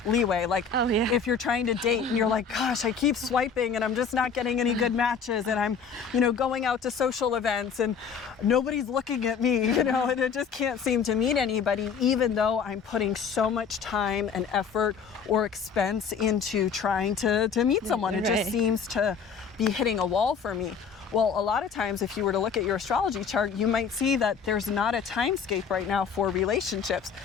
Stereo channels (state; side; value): quieter; right; 6.1 dB